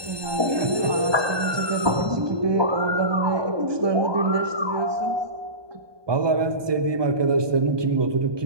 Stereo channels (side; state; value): left; late; 1.2 ms